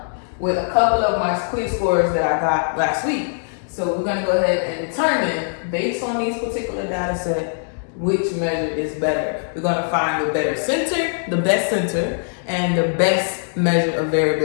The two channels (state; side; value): silent; right; digital silence